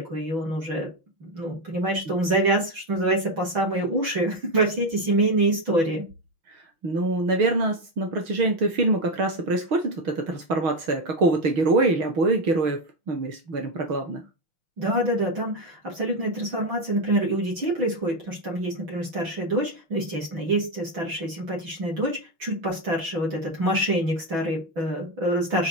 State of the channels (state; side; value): late; left; 6.1 ms